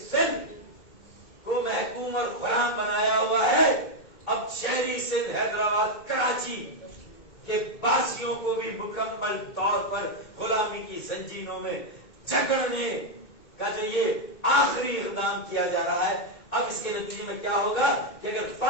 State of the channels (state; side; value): late; right; 2.2 ms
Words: کو محکوم اور غلام بنایا ہوا ہے، اب شہری سندھ، حیدرآباد، کراچی کہ باسیوں کو بھی مکمل طور پر غلامی کی زنجیروں میں جکڑنے کا جو یہ آخری اقدام کیا جا رہا ہے، اب اس کے نتیجے میں کیا ہوگا کہ اگر